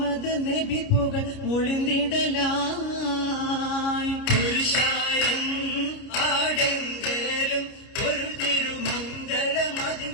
നബി പുകൾ മൊളിന്തിടലായി പുരുഷാരം ആടെങ്കലും പൊരുൾ തിരുമംഗലമതി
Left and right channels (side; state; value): right; late; 29 ms